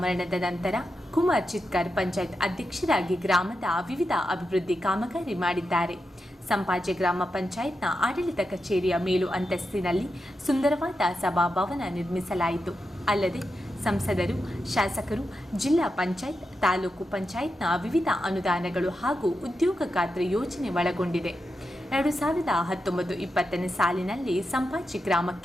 ಮರಣದ ನಂತರ ಕುಮಾರ್ ಚಿತ್ಕರ್ ಪಂಚಾಯತ್ ಅಧ್ಯಕ್ಷರಾಗಿ ಗ್ರಾಮದ ವಿವಿಧ ಅಭಿವೃದ್ಧಿ ಕಾಮಗಾರಿ ಮಾಡಿದ್ದಾರೆ. ಸಂಪಾಜೆ ಗ್ರಾಮ ಪಂಚಾಯತ್ನ ಆಡಳಿತ ಕಚೇರಿಯ ಮೇಲು ಅಂತಸ್ತಿನಲ್ಲಿ ಸುಂದರವಾದ ಸಭಾಭವನ ನಿರ್ಮಿಸಲಾಯಿತು. ಅಲ್ಲದೆ ಸಂಸದರು, ಶಾಸಕರು, ಜಿಲ್ಲಾ ಪಂಚಾಯತ್, ತಾಲೂಕು ಪಂಚಾಯತ್ನ ವಿವಿಧ ಅನುದಾನಗಳು ಹಾಗೂ ಉದ್ಯೋಗ ಖಾತ್ರಿ ಯೋಜನೆ ಒಳಗೊಂಡಿದೆ. 2019-20 ಸಾಲಿನಲ್ಲಿ ಸಂಪಾಜೆ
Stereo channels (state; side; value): normal; both; correlation 0.88